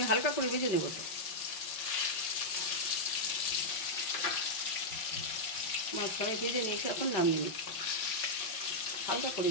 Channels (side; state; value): right; late; 5.1 ms